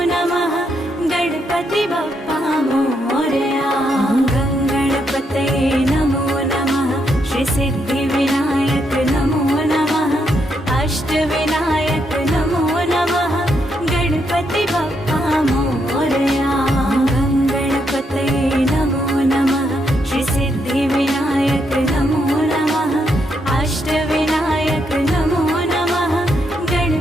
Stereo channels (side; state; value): both; normal; correlation 0.78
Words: नमः गणपति बप्पा मोरया। गंगणपतये नमो नमः श्री सिद्धिविनायक नमो नमः अष्टविनायक नमो नमः गणपति बप्पा मोरया। गंगणपतये नमो नमः श्री सिद्धिविनायक नमो नमः अष्टविनायक नमो नमः